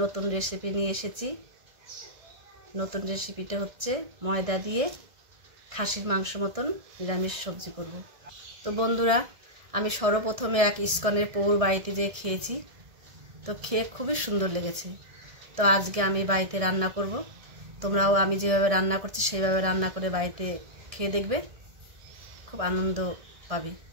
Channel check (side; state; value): left; late; 1.6 ms